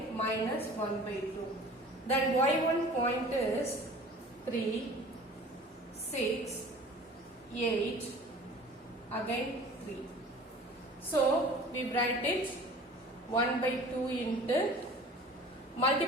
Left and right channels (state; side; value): normal; both; correlation 0.45